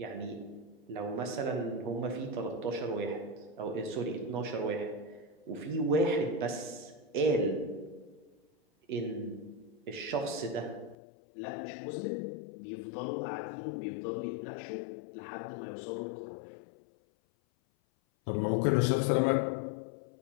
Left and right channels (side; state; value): right; drops out; at 11.0 s